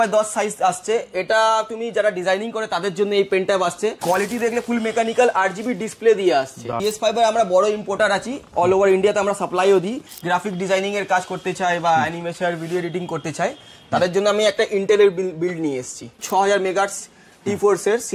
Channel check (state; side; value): identical; both; correlation 1.00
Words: সাইজ আসছে। এটা তুমি যারা ডিজাইনিং করে তাদের জন্য এই পেন ট্যাব আসছে। কোয়ালিটি দেখলে ফুল মেকানিক্যাল 8GB ডিসপ্লে দিয়ে আসছে। PS5 এর আমরা বড় ইম্পোর্টার আছি, অল ওভার ইন্ডিয়াতে আমরা সাপ্লাইও দিই। গ্রাফিক ডিজাইনিং এর কাজ করতে চাই বা অ্যানিমেশন ভিডিও এডিটিং করতে চাই, তাদের জন্য আমি একটা ইন্টেলের বিল্ড নিয়ে এসেছি। 6000 মেগাহার্টজ T4 এর